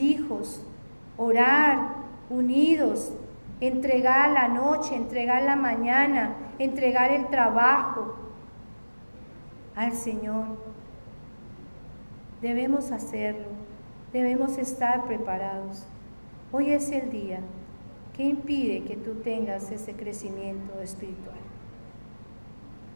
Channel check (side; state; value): both; inverted; correlation -1.00